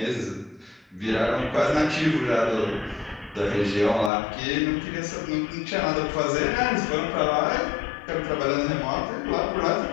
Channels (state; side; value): drops out; right; at 4.1 s